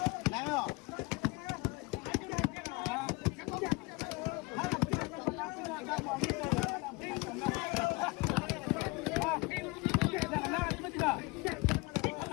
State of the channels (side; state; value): right; quieter; 26.4 dB